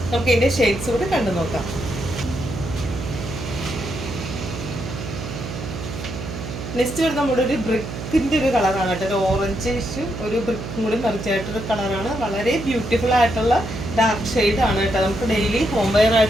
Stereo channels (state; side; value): noise; right; hum, 8 dB below the sound